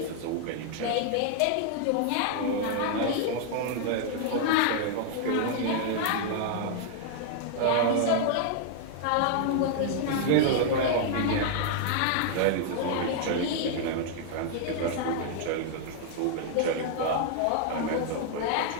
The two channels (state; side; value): different; both; correlation 0.00